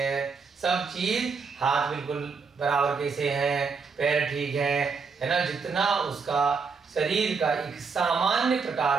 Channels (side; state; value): left; quieter; 5.1 dB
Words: सब चीज, हाथ बिल्कुल बराबर कैसे हैं, पैर ठीक है ना, जितना उसका शरीर का एक सामान्य